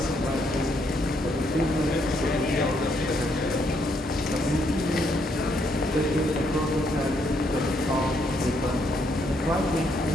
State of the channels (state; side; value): normal; both; correlation 0.73